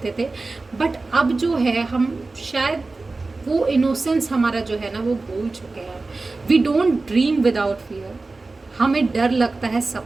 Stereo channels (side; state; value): left; quieter; 3.5 dB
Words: थे, बट अब जो है हम शायद वो इनोसेंस हमारा जो है ना वो भूल चुके हैं। We don't dream without fear. हमें डर लगता है